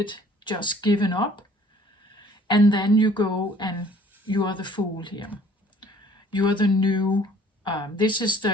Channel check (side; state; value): both; normal; correlation 0.56